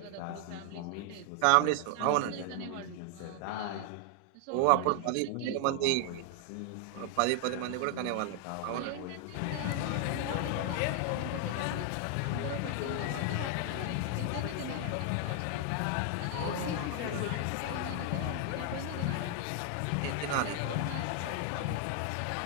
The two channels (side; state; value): both; different; correlation 0.00